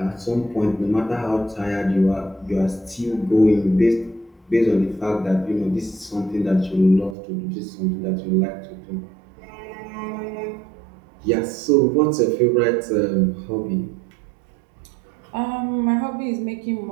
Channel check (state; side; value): drops out; left; at 7.2 s